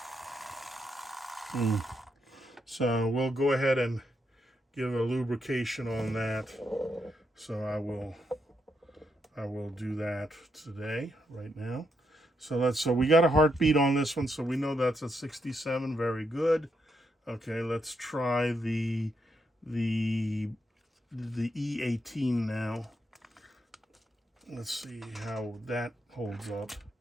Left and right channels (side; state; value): both; normal; correlation 0.80